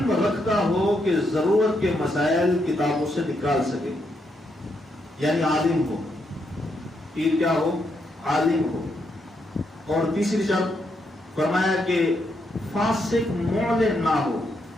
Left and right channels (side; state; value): both; normal; correlation 0.79